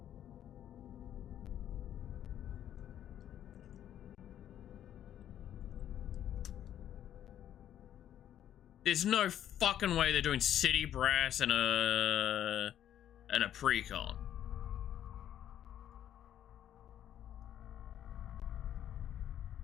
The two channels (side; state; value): right; quieter; 10.7 dB